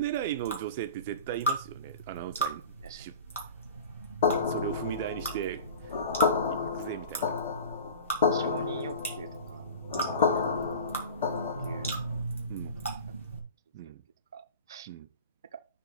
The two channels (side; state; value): both; inverted; correlation -0.36